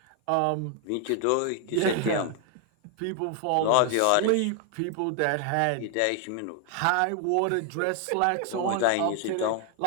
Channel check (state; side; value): different; both; correlation 0.00